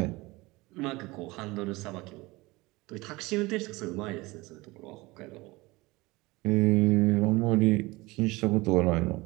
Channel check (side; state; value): left; quieter; 22.0 dB